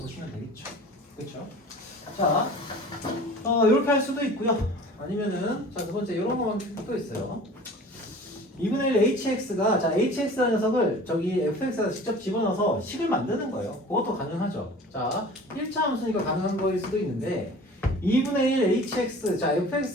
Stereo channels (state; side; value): normal; both; correlation 0.43